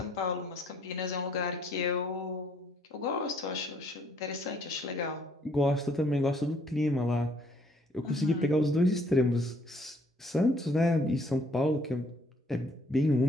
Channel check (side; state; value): both; normal; correlation 0.64